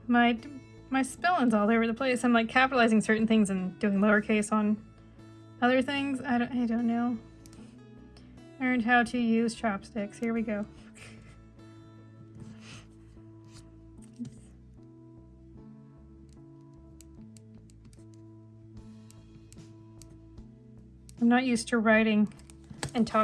my spelling's all over the place. I'm like capitalizing certain things and doing lowercase on other things. I don't know. Learned how to use chopsticks. Here we go. I'm not used to writing and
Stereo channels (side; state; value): both; identical; correlation 1.00